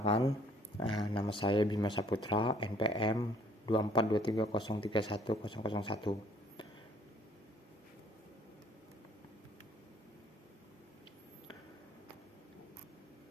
nama saya Bima Saputra, NPM 2423031001.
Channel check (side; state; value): both; normal; correlation 0.60